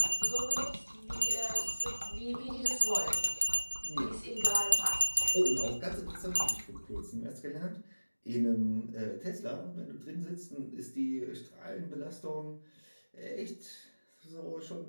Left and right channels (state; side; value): inverted; both; correlation -1.00